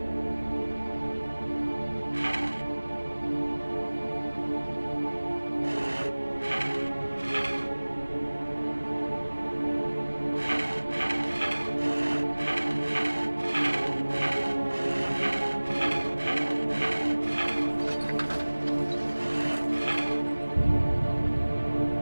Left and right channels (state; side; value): inverted; both; correlation -1.00